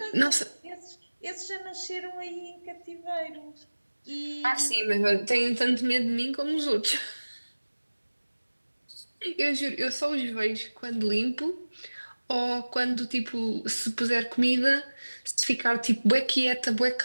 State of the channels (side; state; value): both; inverted; correlation -1.00